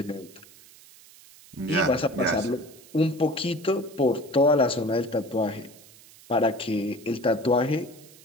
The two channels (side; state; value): right; noise; hiss, 23 dB below the sound